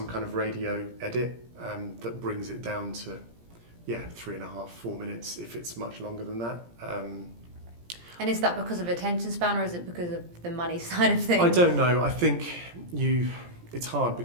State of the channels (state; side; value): late; left; 17 ms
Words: kind of radio edit that brings it down to 3.5, 4 minutes if it's much longer than that. And is that because of attention span, or is it because of the money side of things? I don't know. I think it's hard